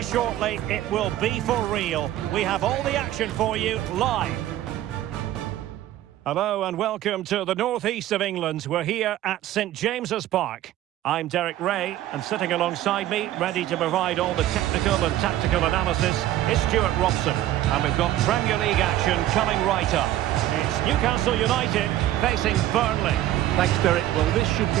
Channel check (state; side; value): quieter; left; 13.5 dB